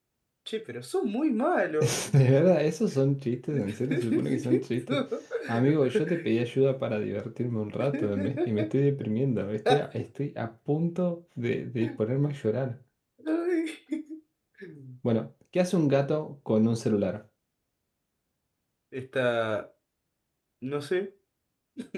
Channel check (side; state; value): both; identical; correlation 1.00